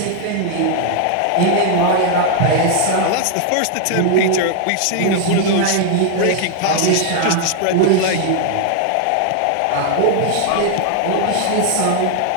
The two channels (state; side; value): different; both; correlation 0.00